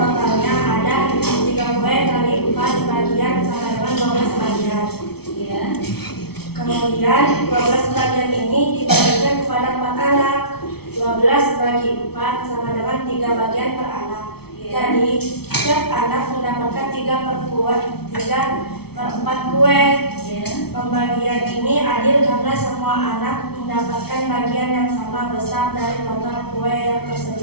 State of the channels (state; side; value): late; right; 0.96 ms